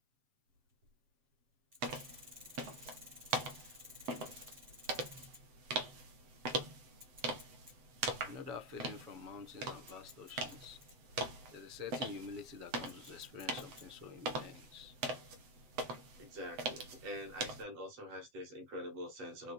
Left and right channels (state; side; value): late; left; 7.6 ms